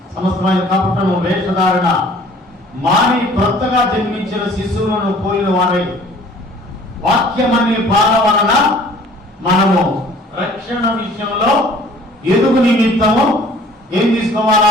సమస్తమైన కపటము, వేషధారణ మాని కొత్తగా జన్మించిన శిశువులను పోలిన వారై వాక్యమనే పాల వలన మనము రక్షణ విషయంలో ఎదుగు నిమిత్తము ఏం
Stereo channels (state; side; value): normal; both; correlation 0.52